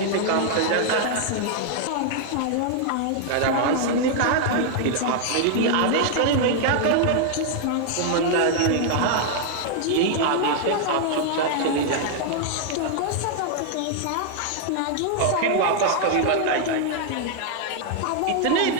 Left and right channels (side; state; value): both; different; correlation 0.00